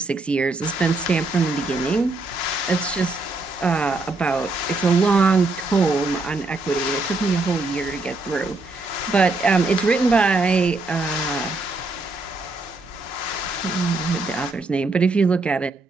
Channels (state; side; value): quieter; left; 3.2 dB